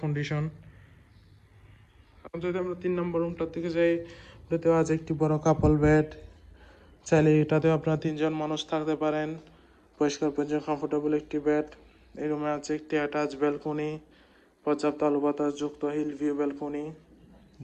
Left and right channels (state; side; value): identical; both; correlation 1.00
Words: কন্ডিশন। যদি আমরা 3 নম্বর রুমটার দিকে যাই, ওটাতেও আছে একটি বড় কাপল বেড। চাইলে এটাতেও আপনারা 3 জন মানুষ থাকতে পারেন। পরিষ্কার পরিচ্ছন্ন কমফোর্টেবল একটি বেড। এই রুমে আছে একটি অ্যাটাচ ব্যালকনি, পর্যাপ্ত আলো বাতাস যুক্ত হিল ভিউ ব্যালকনি,